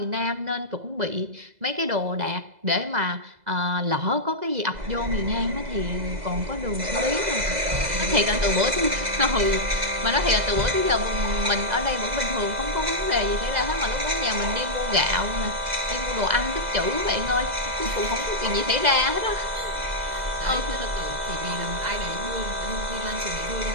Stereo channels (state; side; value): late; left; 2.0 ms